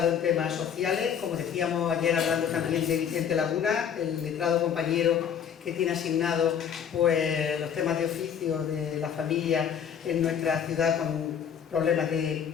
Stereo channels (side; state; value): right; quieter; 8.1 dB